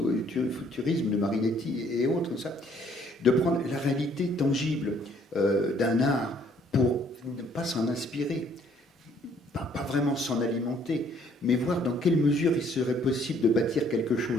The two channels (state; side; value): normal; both; correlation 0.62